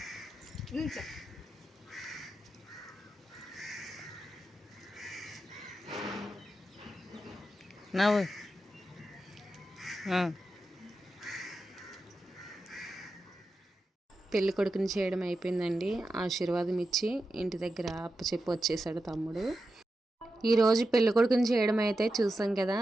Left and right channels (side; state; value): both; normal; correlation 0.90